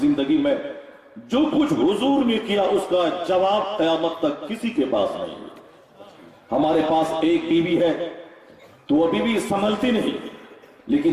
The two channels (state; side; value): identical; both; correlation 1.00